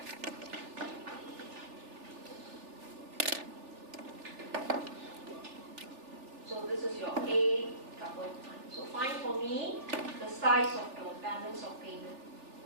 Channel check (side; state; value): left; late; 3.4 ms